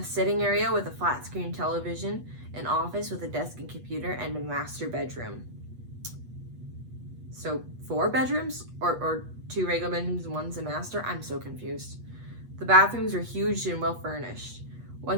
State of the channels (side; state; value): left; late; 8.2 ms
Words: sitting area with a flat-screen television, an office with a desk and computer, and a master bedroom. So 4 bedrooms? Or 2 regular bedrooms and one's a master? I'm so confused. The bathrooms were huge and well furnished.